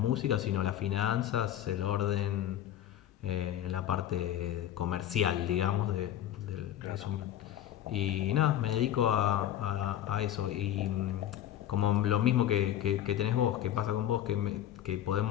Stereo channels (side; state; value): right; quieter; 11.7 dB